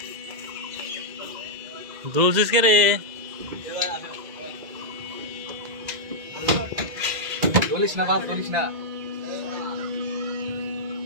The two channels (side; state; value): left; late; 1.9 ms